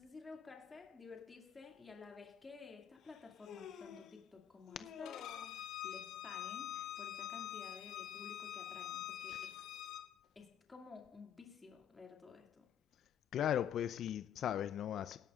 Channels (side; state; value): right; quieter; 9.5 dB